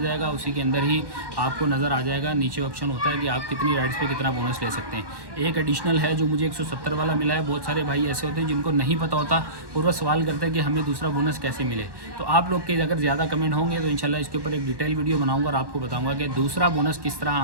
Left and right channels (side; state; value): left; late; 1.1 ms